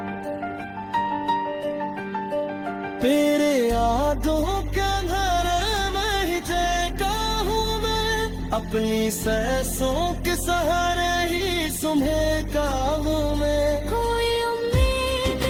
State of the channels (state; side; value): identical; both; correlation 1.00